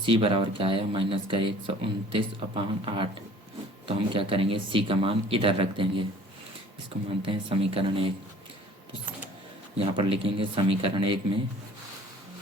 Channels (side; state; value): both; normal; correlation 0.50